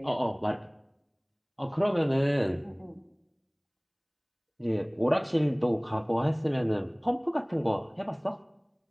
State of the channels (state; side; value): identical; both; correlation 1.00